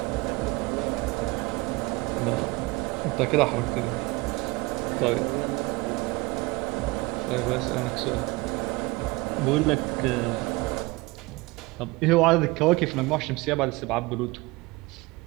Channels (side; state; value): left; quieter; 23.2 dB